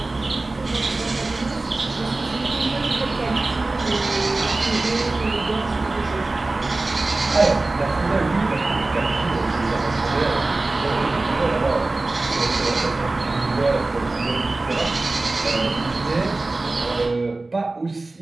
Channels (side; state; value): left; quieter; 3.2 dB